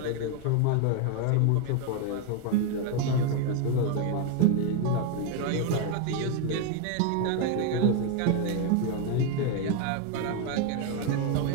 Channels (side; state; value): both; different; correlation 0.01